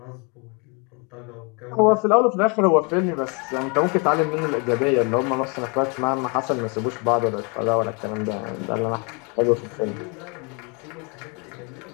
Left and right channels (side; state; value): right; quieter; 33.3 dB